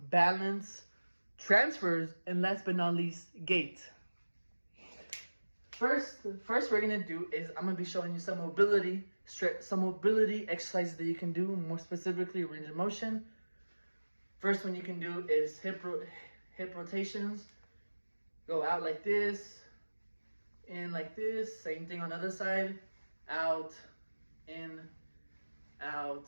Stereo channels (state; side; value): inverted; both; correlation -1.00